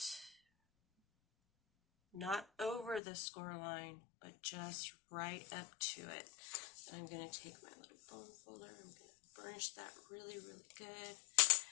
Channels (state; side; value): drops out; right; at 3.0 s